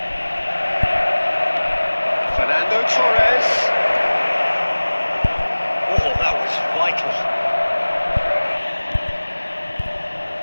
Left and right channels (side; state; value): both; inverted; correlation -1.00